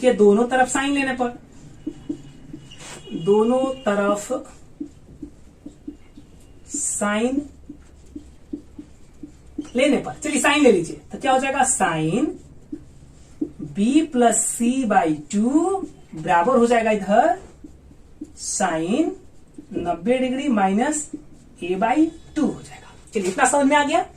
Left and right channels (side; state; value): both; identical; correlation 1.00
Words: दोनों तरफ साइन लेने पर, दोनों तरफ साइन लेने पर, चलिए साइन ले लीजिए, तो क्या हो जाएगा, साइन b + c/2 बराबर हो जाएगा इधर साइन 90 डिग्री माइनस a/2 हो जाएगा। चलिए, इतना समझ में आ गया।